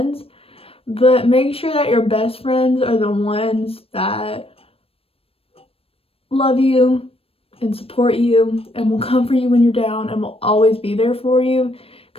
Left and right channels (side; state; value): right; late; 0.28 ms